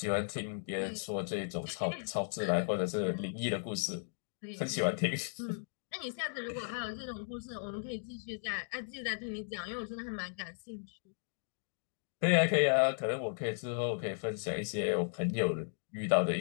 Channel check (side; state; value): right; silent; digital silence